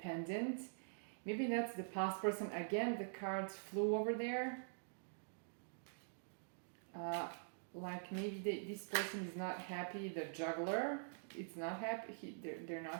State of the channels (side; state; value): left; silent; digital silence